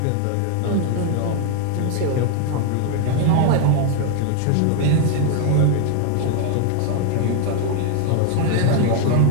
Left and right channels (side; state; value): both; different; correlation 0.00